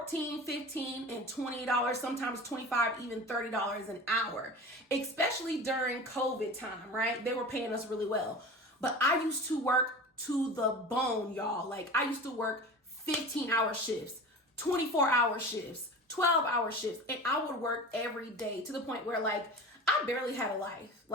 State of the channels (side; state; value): both; normal; correlation 0.34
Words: $15, and $20, sometimes $25, even $30 an hour, especially during COVID time, right? They were paying us really well. But I used to work to the bone, y'all. Like, I used to work 15-hour shifts, 24-hour shifts, 12-hour shifts, and I would work every day to the point where like I barely had a life.